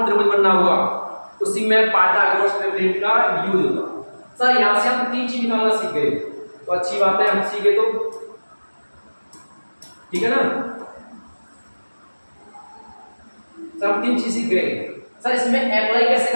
त्रिभुज बनना होगा, उसी में पाइथागोरस थ्योरम का यूज होगा। सर यहाँ से हम 3 चीज निकालना सीख गए, तो अच्छी बात है, हम सीखे तो ठीक है ना। सर हम 3 चीज सीख गए। सर इसमें अप्लाई कैसे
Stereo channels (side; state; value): both; inverted; correlation -1.00